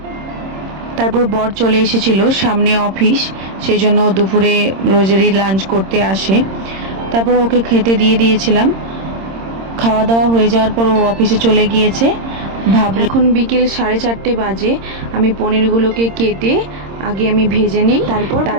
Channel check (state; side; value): late; left; 26 ms